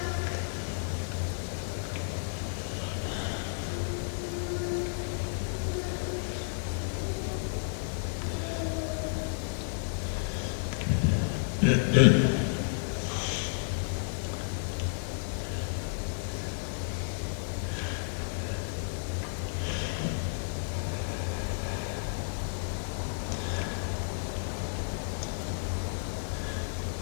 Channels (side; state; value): right; silent; digital silence